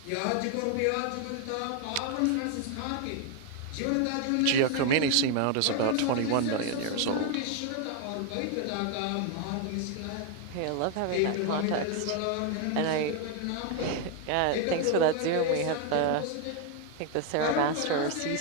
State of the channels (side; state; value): both; different; correlation 0.01